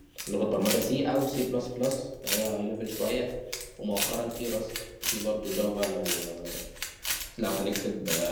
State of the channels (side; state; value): both; identical; correlation 1.00